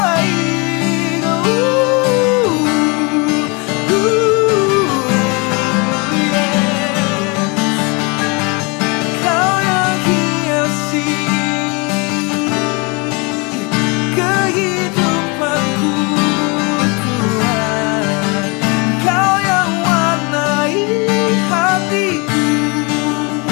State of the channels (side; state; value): right; quieter; 29.7 dB